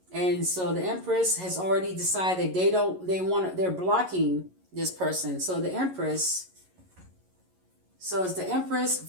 And so the Empress has already decided they're blocking this person. So the Empress, so it's the Empress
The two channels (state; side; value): late; left; 11 ms